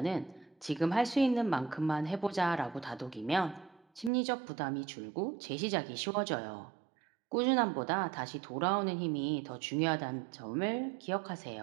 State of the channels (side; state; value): left; drops out; at 4.1 s